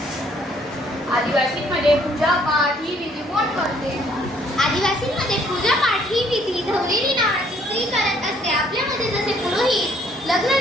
आदिवासींमध्ये पूजा पाठ ही विधी कोण करते? आदिवासींमध्ये पूजा पाठ ही विधी धवलेरी नावाची स्त्री करत असते. आपल्यामध्ये जसे पुरोहित लग्न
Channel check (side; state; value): both; normal; correlation 0.64